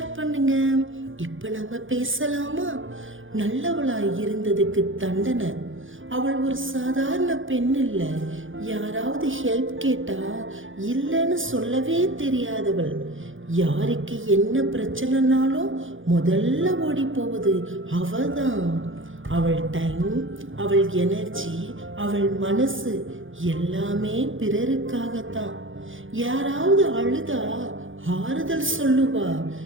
பண்ணுங்க. இப்போ நம்ம பேசலாமா? நல்லவளாய் இருந்ததுக்கு தண்டனை. அவள் ஒரு சாதாரண பெண் இல்லை. யாராவது ஹெல்ப் கேட்டா இல்லைன்னு சொல்லவே தெரியாதவள். யாருக்கு என்ன பிரச்சனைனாலும் முதல்ல ஓடி போவது அவதான். அவள் டைம், அவள் எனர்ஜி, அவள் மனசு எல்லாமே பிறருக்காகத்தான். யாராவது அழுதா ஆறுதல் சொல்லுவா,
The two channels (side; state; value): left; late; 0.58 ms